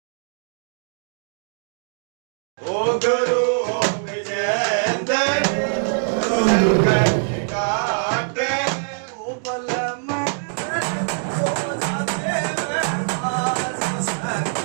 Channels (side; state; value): left; silent; digital silence